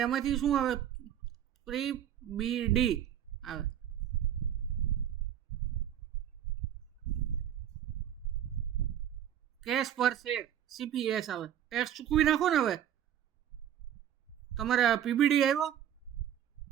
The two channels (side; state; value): left; quieter; 10.3 dB